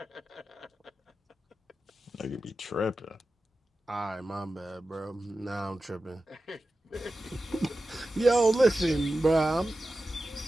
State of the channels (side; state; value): both; normal; correlation 0.94